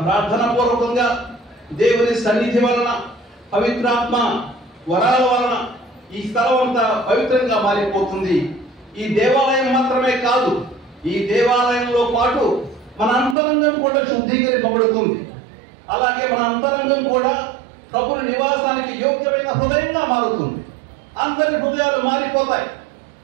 ప్రార్థన పూర్వకంగా దేవుని సన్నిధి వలన, పవిత్రాత్మ వరాల వలన ఈ స్థలం అంతా పవిత్రంగా మారిపోతుంది. ఈ దేవాలయం మాత్రమే కాదు, ఈ దేవాలయంలో పాటు మన అంతరంగం కూడా శుద్ధీకరింపబడుతుంది. అలాగే మన అంతరంగం కూడా ప్రభుని నివాసానికి యోగ్యమైన హృదయంగా మారుతుంది. అందరి హృదయాలు మారిపోతాయి.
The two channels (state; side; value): drops out; left; at 13.4 s